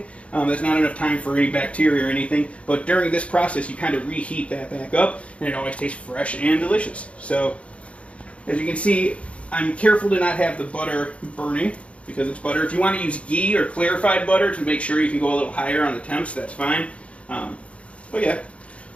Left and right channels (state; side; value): late; right; 0.062 ms